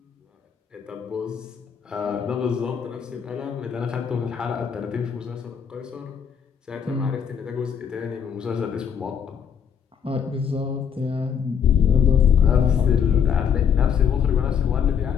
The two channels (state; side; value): quieter; right; 7.6 dB